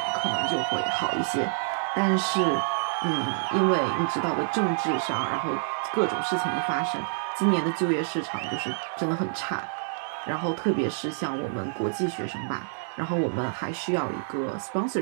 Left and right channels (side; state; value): left; silent; digital silence